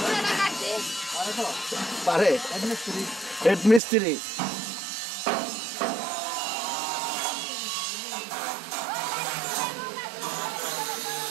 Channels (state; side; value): drops out; left; at 3.8 s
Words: পারে? হেড মিস্ত্রি।